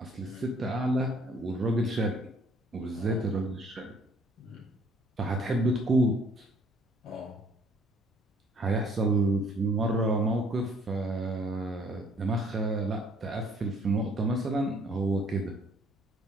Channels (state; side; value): normal; both; correlation 0.60